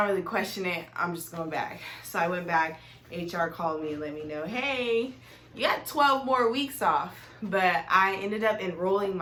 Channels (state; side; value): identical; both; correlation 1.00